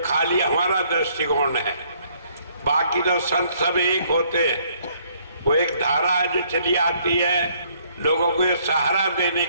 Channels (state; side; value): inverted; both; correlation -0.65